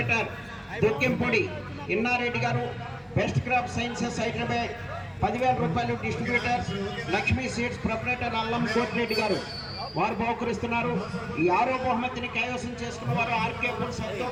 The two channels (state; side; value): identical; both; correlation 1.00